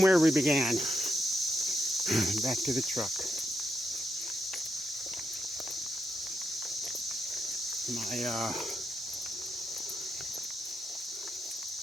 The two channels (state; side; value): normal; both; correlation 0.83